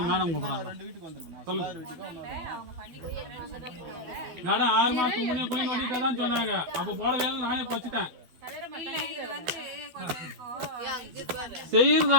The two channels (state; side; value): late; left; 12 ms